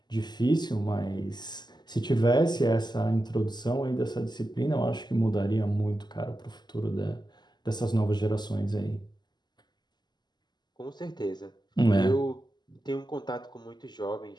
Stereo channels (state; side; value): late; right; 0.21 ms